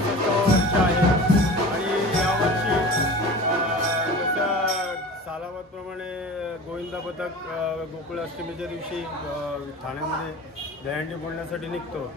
वर्ष आहे. आणि यावर्षी जसं सालाबादप्रमाणे गोविंदा पथक गोकुळ अष्टमीच्या दिवशी ठाण्यामध्ये दहीहंडी बोलण्यासाठी निघतो.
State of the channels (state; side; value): normal; both; correlation 0.37